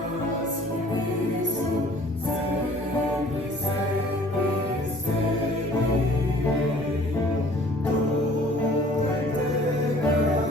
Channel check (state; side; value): normal; both; correlation 0.52